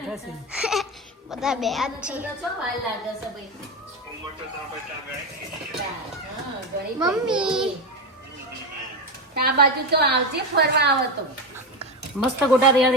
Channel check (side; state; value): both; normal; correlation 0.16